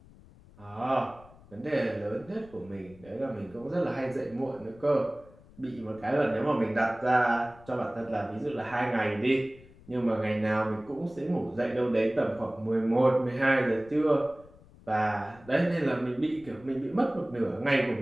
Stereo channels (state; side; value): noise; left; rumble, 23 dB below the sound